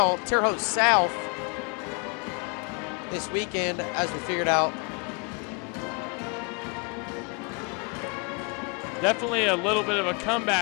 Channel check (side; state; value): right; quieter; 34.1 dB